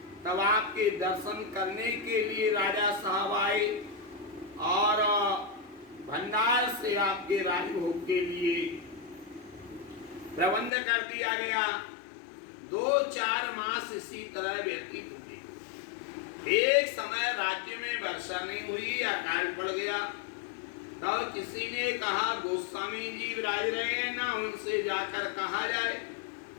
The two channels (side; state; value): right; drops out; at 10.7 s